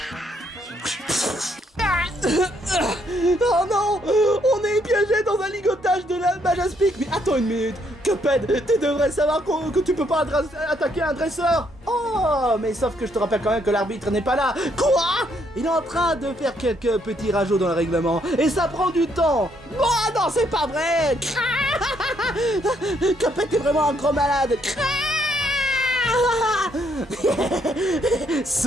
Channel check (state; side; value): normal; both; correlation 0.72